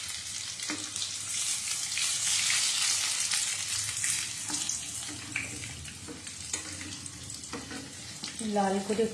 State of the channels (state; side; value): identical; both; correlation 1.00